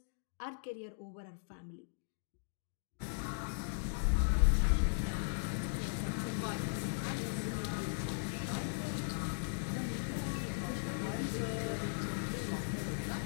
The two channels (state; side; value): silent; right; digital silence